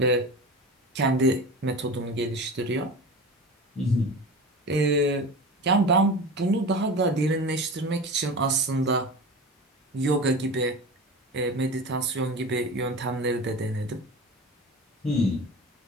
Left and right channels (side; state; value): both; normal; correlation 0.31